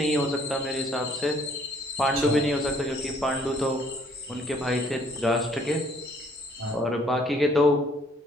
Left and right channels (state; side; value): normal; both; correlation 0.62